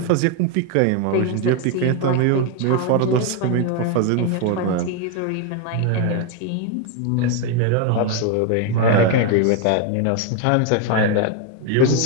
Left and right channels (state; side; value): different; both; correlation 0.01